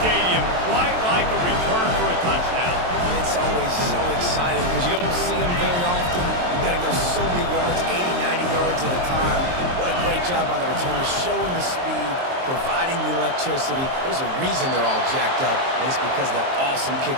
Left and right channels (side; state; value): left; late; 23 ms